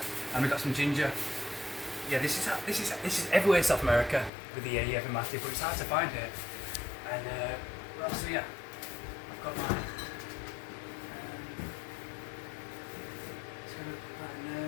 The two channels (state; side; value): drops out; right; at 4.3 s